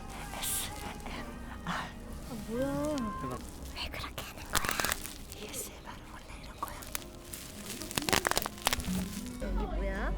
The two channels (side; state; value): both; identical; correlation 1.00